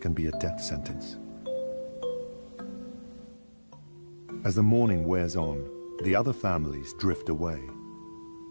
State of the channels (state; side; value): inverted; both; correlation -1.00